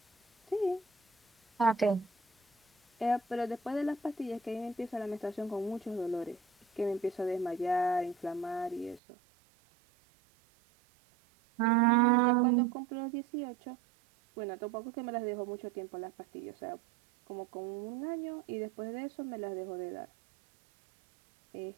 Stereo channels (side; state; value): left; drops out; at 9.0 s